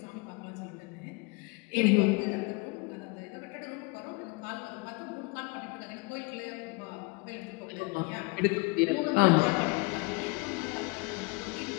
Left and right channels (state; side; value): quieter; right; 27.7 dB